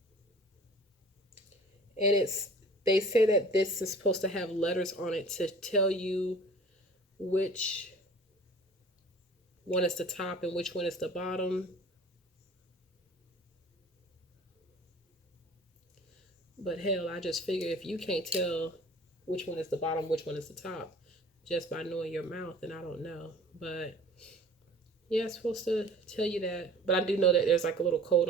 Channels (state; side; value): normal; both; correlation 0.46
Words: And they say that this is supposed to have letters on it to tell you which one is the top and which one is the bottom. But hell, I just figure if you can't tell which one is the bottom, which one is the top, just by knowing your mouth, then I don't know. But yeah, it's supposed to tell you that. But I do know that there's like a little code